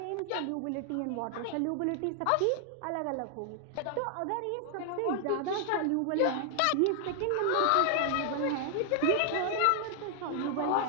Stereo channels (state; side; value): different; both; correlation 0.00